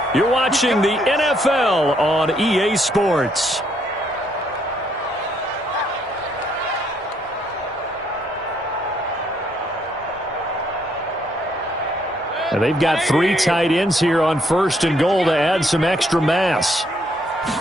You're watching the NFL on EA Sports. And they've got 3 tight ends here on 1st and goal to add some extra mass.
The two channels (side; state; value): both; normal; correlation 0.71